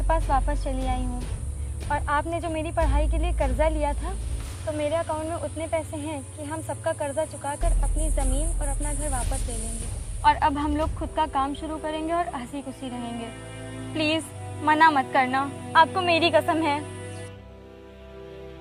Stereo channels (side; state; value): both; identical; correlation 1.00